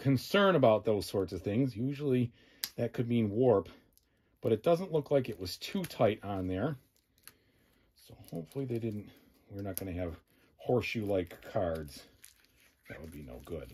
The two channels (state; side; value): identical; both; correlation 1.00